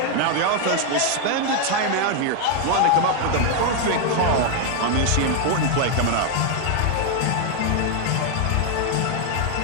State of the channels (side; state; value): both; different; correlation 0.01